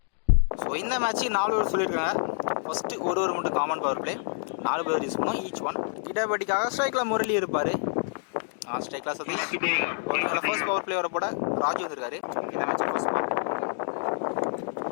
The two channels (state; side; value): silent; right; digital silence